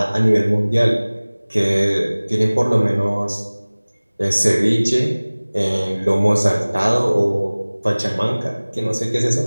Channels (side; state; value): both; inverted; correlation -1.00